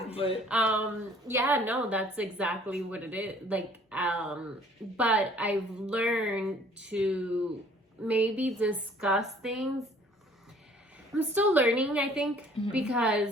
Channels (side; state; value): both; normal; correlation 0.56